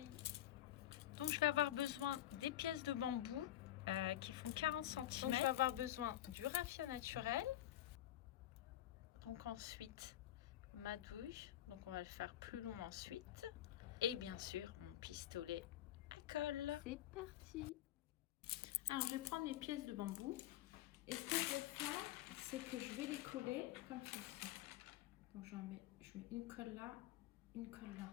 Donc je vais avoir besoin des pièces de bambou qui font 40 cm. Donc je vais avoir besoin du raffia naturel. Donc ensuite ma douille. Donc on va le faire plus long ensuite. Et bien sûr mon pistolet à colle. C'est parti. Alors je vais prendre mes pièces de bambou. Et ce que je vais faire, c'est que je vais les coller comme ceci. Donc je mets une colle là, une colle là.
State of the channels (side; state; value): right; quieter; 13.2 dB